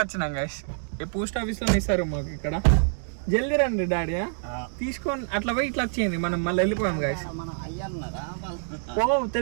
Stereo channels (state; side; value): silent; left; digital silence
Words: వచ్చినాం గైస్ ఈ పోస్ట్ ఆఫీస్ లో ఇస్తారు మాకు ఇక్కడ జల్దీ రండి డాడీ తీసుకొని అట్లా పోయి ఇట్లా వచ్చేయండి మనం మళ్ళీ వెళ్ళిపోయాం గైస్